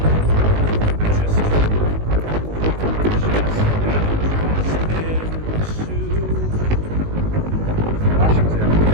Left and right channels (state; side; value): late; left; 19 ms